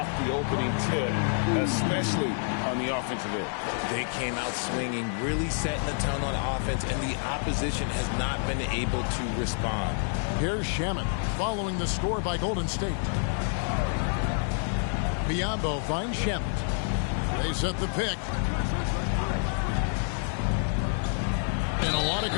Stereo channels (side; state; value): right; silent; 59 dB below the other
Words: the opening tip, especially on the offensive end. They came out swinging, really setting the tone on offense, and the opposition has not been able to respond. Here's Shamet following the score by Golden State. Biyombo finds Shamet. They set the pick. And a lot of